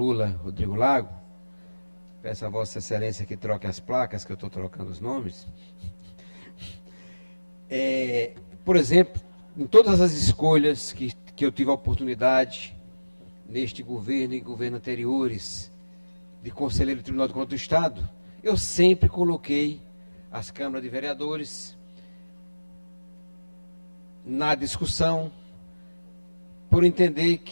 Rodrigo Lago, peço a Vossa Excelência que troque as placas, que eu estou trocando os nomes. Por exemplo, em todas as escolhas que eu tive a oportunidade, neste governo e governo anteriores, de conselheiro do Tribunal de Contas do Estado, eu sempre coloquei as câmaras de vereadores na discussão, por entender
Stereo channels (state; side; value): inverted; both; correlation -1.00